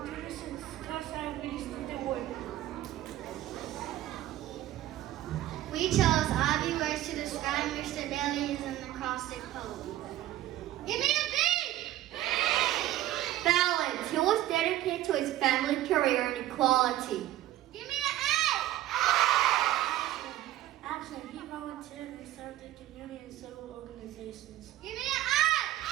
class abilities to the work. We chose obvious words to describe Mr. Bailey's an acrostic poem. Give me a B! Balance. He was dedicated to his family, career, and equality. Give me an A! Action. He volunteered and served the community in several organizations. Give me an I!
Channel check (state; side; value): quieter; left; 14.2 dB